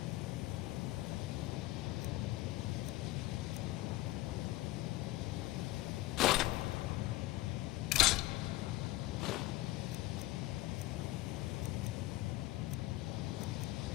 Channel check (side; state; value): right; quieter; 17.7 dB